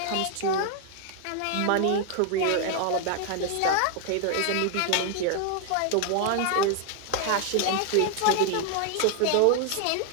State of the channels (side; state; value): both; different; correlation 0.00